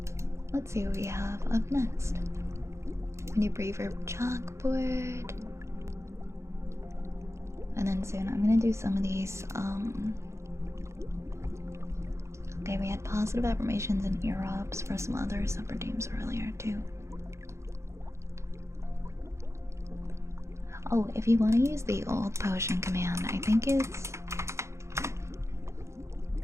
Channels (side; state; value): left; late; 0.14 ms